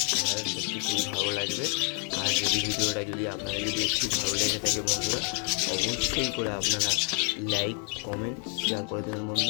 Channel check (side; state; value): right; quieter; 39.0 dB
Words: আপনাদের সত্যি খুবই ভালো লাগবে। আর যদি ভিডিওটা যদি আপনাদের যদি একটু ভালো লেগে থাকে বন্ধুরা, অবশ্যই করে আপনারা লাইক কমেন্ট শেয়ার করে দেবেন